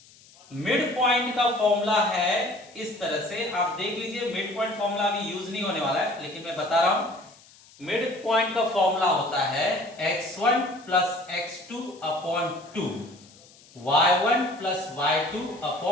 मिड पॉइंट का फॉर्मूला है इस तरह से, आप देख लीजिए, मिड पॉइंट फॉर्मूला अभी यूज नहीं होने वाला है, लेकिन मैं बता रहा हूं। मिड पॉइंट का फॉर्मूला होता है x1 + x2 upon 2, y1 + y2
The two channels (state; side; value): noise; left; hiss, 25 dB below the sound